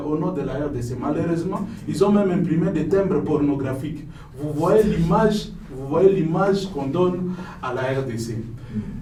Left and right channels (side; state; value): both; identical; correlation 1.00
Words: nom de la RDC. Malheureusement, ils ont même imprimé des timbres pornographiques. Vous voyez l'image qu'on donne à la RDC.